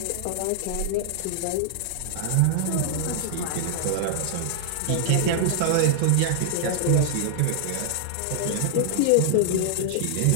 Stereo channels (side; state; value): both; different; correlation -0.01